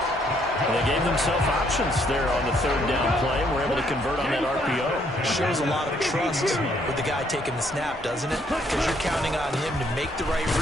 Well, they gave themselves options there on the 3rd down play and were able to convert on that RPO. Shows a lot of trust with the guy taking the snap, doesn't it? Because you're counting on him to make the right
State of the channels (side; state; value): both; normal; correlation 0.69